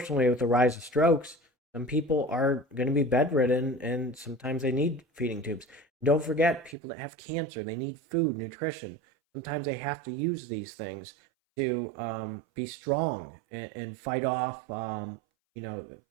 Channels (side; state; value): left; drops out; at 6.8 s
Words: with the rise of strokes, some people are going to be bedridden and sometimes they need feeding tubes. Don't forget, people that have cancer, they need food, nutrition. Sometimes they have to use these things to be strong and fight off, the